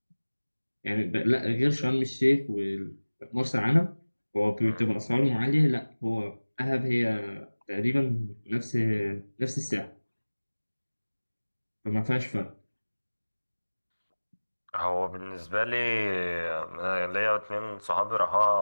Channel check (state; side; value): inverted; both; correlation -1.00